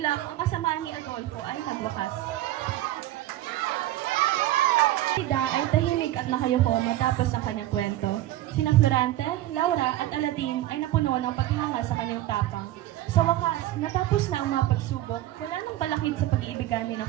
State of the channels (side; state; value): left; quieter; 14.8 dB